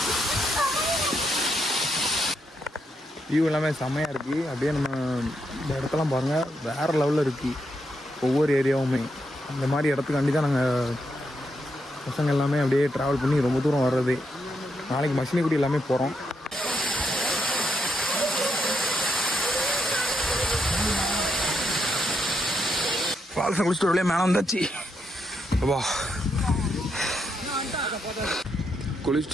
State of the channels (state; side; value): normal; both; correlation 0.80